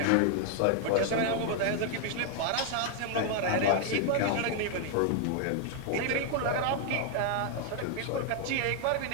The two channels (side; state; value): both; different; correlation 0.00